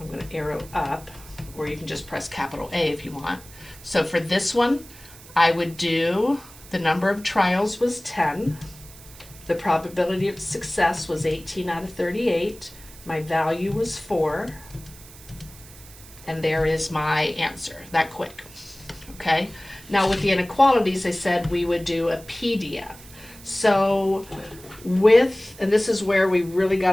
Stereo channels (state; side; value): noise; right; hiss, 20 dB below the sound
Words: going to arrow up, or you can just press capital A if you want. So for this one, I would do the number of trials was 10. The probability of success was 18 out of 38. My value was 4. And there is my answer, that quick. Okay? Now with the inequalities, I said we would do a PDF. So and this is where we really got